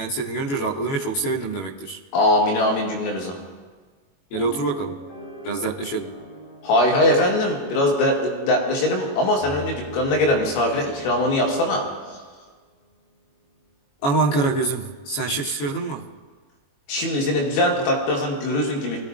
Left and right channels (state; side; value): late; right; 21 ms